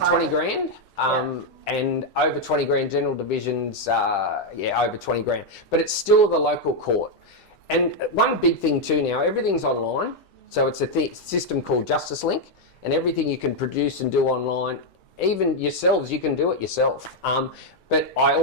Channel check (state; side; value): late; right; 1.6 ms